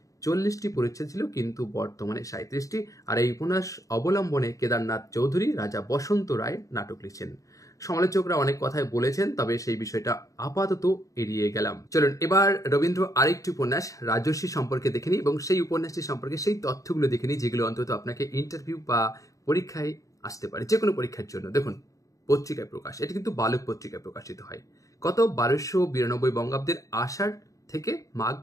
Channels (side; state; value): right; late; 0.16 ms